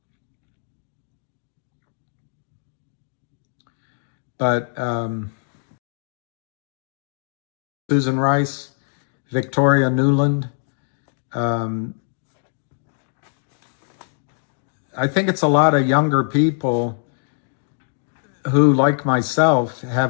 but Susan Rice, Victoria Nuland, I think it's a lot of younger people who, like myself,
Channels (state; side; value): silent; right; digital silence